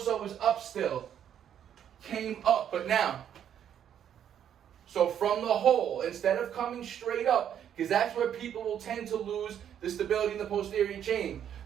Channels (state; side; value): quieter; left; 9.5 dB